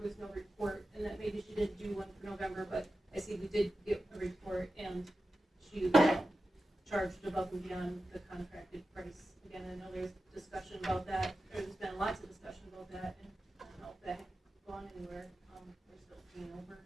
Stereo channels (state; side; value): normal; both; correlation 0.92